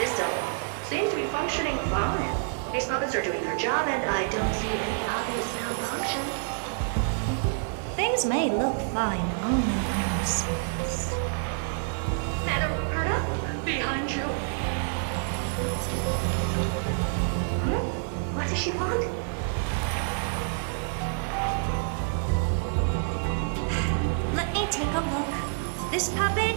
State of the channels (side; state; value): left; silent; 60 dB below the other